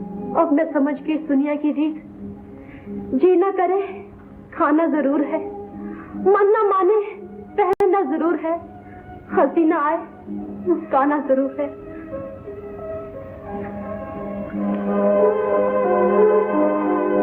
अब मैं समझ के इस दुनिया की रीत, जीना करे खाना जरूर है, मन न माने पहनना जरूर है, हंसी न आए मुस्काना जरूर है।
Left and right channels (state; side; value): identical; both; correlation 1.00